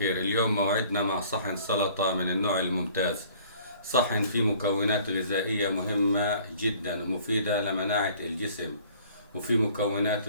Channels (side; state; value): both; inverted; correlation -0.54